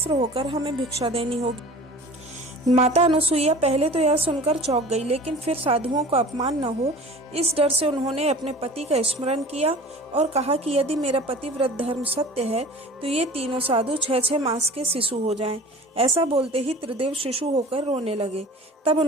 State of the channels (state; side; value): normal; both; correlation 0.42